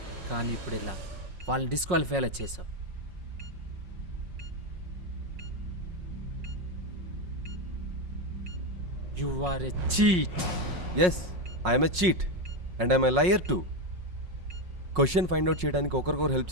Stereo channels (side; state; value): left; late; 5.5 ms